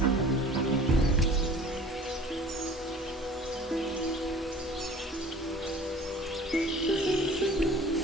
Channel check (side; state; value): both; normal; correlation 0.45